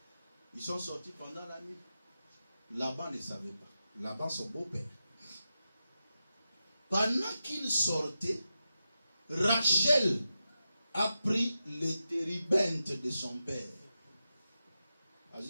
Ils sont sortis pendant la nuit. Laban ne savait pas. Laban, son beau-père. Pendant qu'il sortait, Rachel a pris les térébintes de son père.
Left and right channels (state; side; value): inverted; both; correlation -0.90